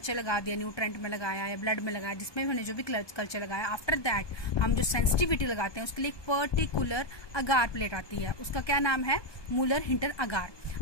लगा दिया, न्यूट्रेंट में लगाया या ब्लड में लगाया, जिसमें भी हमने जो भी कल्चर लगाया, आफ्टर दैट हम जो सेंसिटिविटी लगाते हैं उसके लिए एक पर्टिकुलर अगार प्लेट आती है, उसका क्या नाम है, मूलर हिंटर अगार।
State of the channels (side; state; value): right; late; 1.2 ms